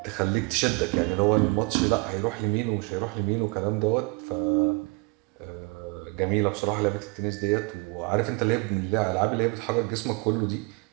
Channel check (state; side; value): quieter; left; 29.5 dB